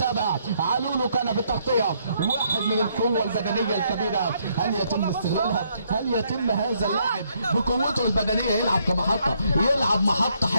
علولو كان بالتغطيه. واحد من القوه البدنيه الكبيره، هل يتم استغلالها؟ هل يتم هذا اللاعب بقوته البدنيه يلعب كمحطه، يلعب محطه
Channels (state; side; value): inverted; both; correlation -0.71